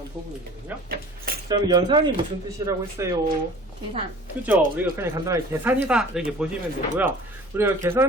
부분이거든요. 자, 그럼 연산이 무슨 뜻이라고 했어요? 계산. 그죠? 우리가 그냥 간단하게 계산이다 이렇게 보시면 되고요. 우리가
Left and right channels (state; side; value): normal; both; correlation 0.44